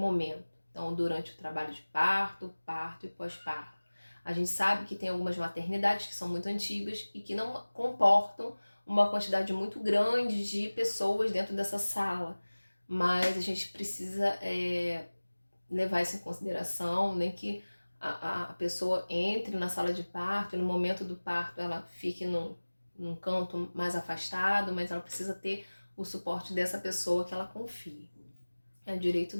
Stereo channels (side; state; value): both; inverted; correlation -1.00